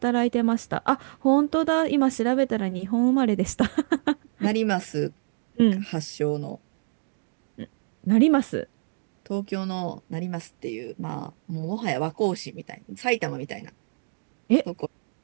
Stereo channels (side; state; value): left; silent; digital silence